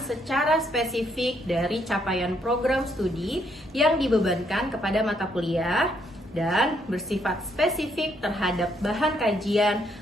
spesifik dari capaian program studi yang dibebankan kepada mata kuliah dan bersifat spesifik terhadap bahan kajian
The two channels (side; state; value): both; normal; correlation 0.72